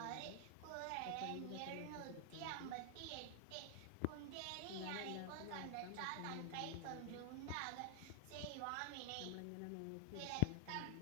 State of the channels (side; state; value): both; different; correlation 0.00